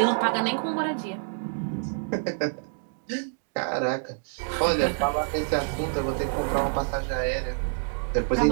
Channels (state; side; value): silent; left; digital silence